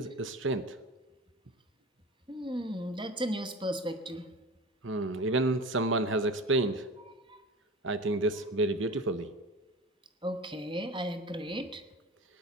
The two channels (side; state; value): both; normal; correlation 0.34